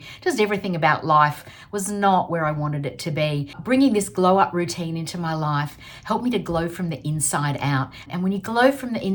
Just everything about life was not where I wanted it to be. Bringing this glow up routine into my life helped me to glow from the inside out. And when you glow from the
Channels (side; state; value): both; identical; correlation 1.00